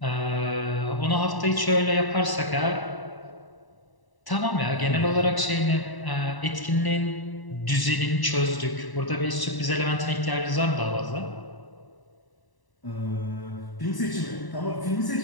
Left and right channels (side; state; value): right; late; 1.0 ms